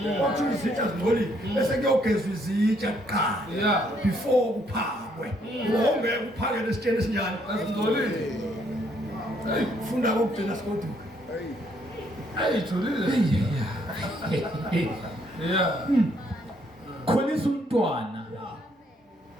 Akuthiwa izitsha zingcolile. Bese kuyogezwa izitsha kuqala. Yeah. Before kuphakwe. Ungeke uphake lesitsheni esinjani. Azingcolile. Funda kokugcina sikoduka. Ayijulile. Yeah. Khulisa umntwana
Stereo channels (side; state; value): both; normal; correlation 0.69